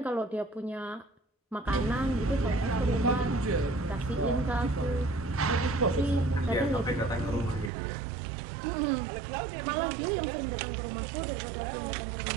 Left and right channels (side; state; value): left; drops out; at 7.7 s